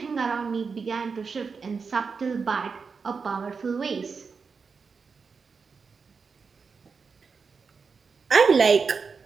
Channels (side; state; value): left; quieter; 5.2 dB